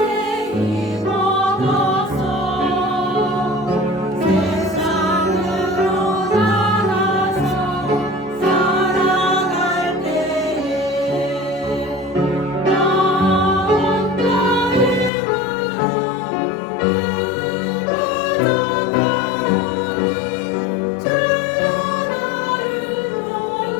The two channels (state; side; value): drops out; right; at 15.1 s